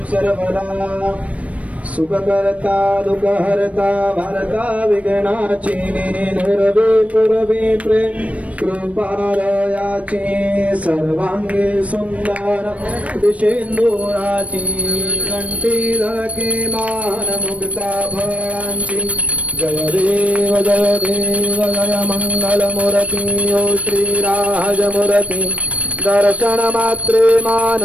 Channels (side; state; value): left; late; 0.065 ms